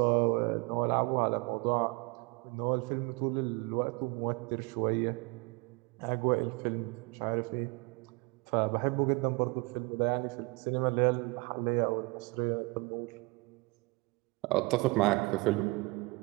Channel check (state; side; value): quieter; left; 26.7 dB